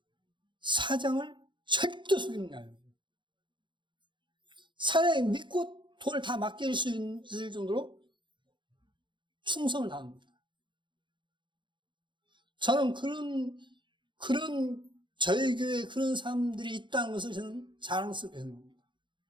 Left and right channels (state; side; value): late; left; 0.23 ms